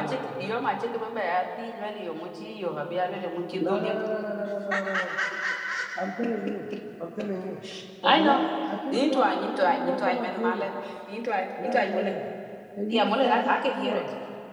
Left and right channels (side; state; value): both; identical; correlation 1.00